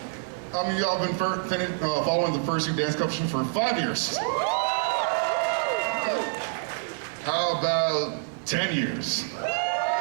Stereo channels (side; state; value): left; silent; digital silence